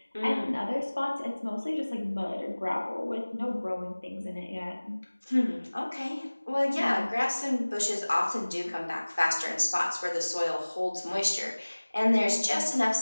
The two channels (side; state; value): both; inverted; correlation -1.00